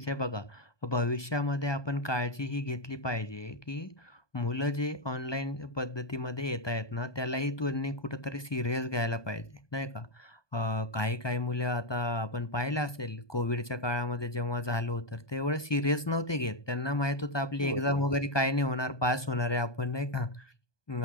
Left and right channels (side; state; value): right; late; 1.2 ms